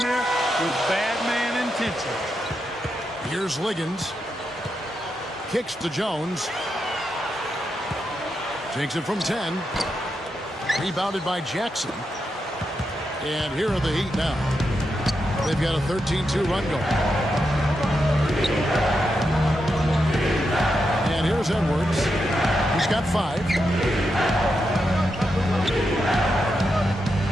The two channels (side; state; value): both; normal; correlation 0.85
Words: with bad man intention. Here's Liggins. Kicks to Jones. Takes it from 10. Rebounded by Jackson. And here are the Heat now. They've got a 13-2 run going. And here's Edwards. He's got 5.